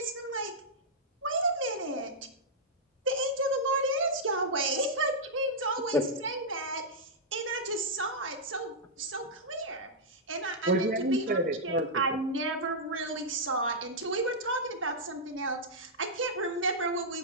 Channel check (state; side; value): normal; both; correlation -0.09